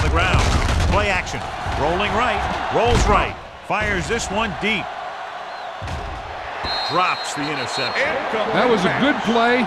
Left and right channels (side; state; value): both; identical; correlation 1.00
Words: the ground. Play action. Rolling right. Rolls right. Fires this one deep. Drops the interception. That was a good play,